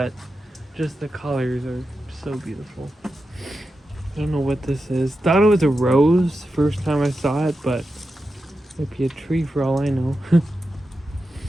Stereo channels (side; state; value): both; normal; correlation 0.90